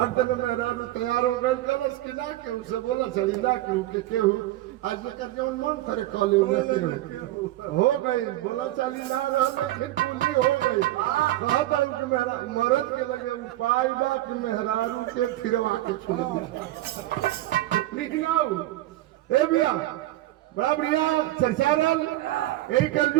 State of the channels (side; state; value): left; quieter; 16.0 dB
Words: में मेहरारू तैयार हो गए। कलश की ना केहू से बोला चली ना केहू के केहू, आज लेकर जो मन करे कॉले हो गई, बोला चली ना रहा फिर पूरी हो गई। कहता हूँ कि मरद के लगे उपाय बा कि मेहरारू के फिरवा के छोड़ दिया। ए भैया बड़ा बढ़िया चर्चा रल, यही